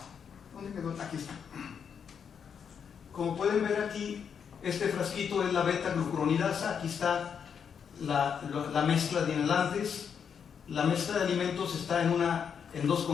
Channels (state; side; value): quieter; right; 7.2 dB